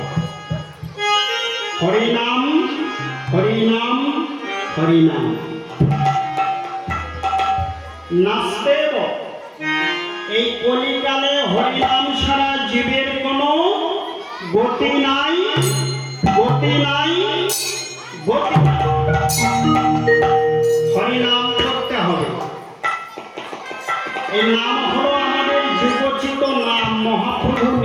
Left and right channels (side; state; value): both; identical; correlation 1.00